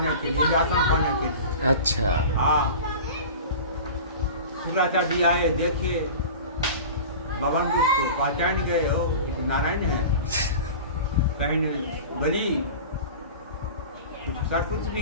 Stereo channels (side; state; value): both; inverted; correlation -0.35